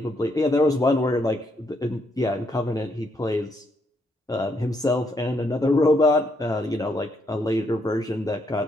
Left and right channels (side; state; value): both; normal; correlation 0.75